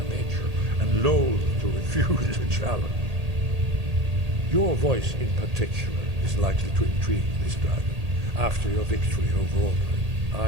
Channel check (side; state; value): left; late; 1.8 ms